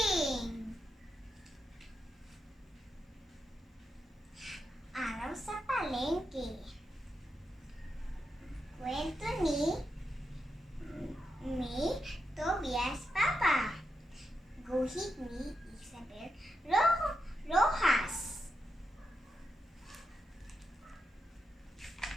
Araw sa palengke. Kwento ni Tobias Papa. Guhit ni Isabel Rojas.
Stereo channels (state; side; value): normal; both; correlation 0.86